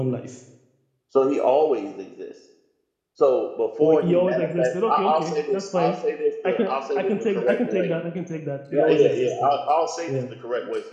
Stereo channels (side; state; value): both; identical; correlation 1.00